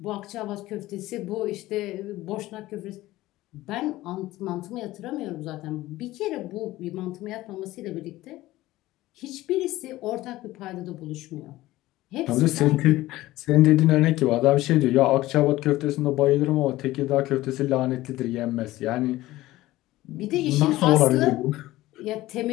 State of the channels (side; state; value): right; quieter; 17.0 dB